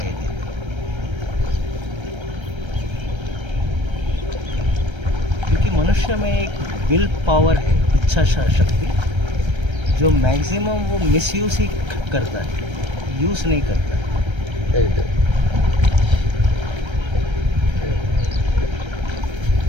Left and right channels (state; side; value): late; left; 1.3 ms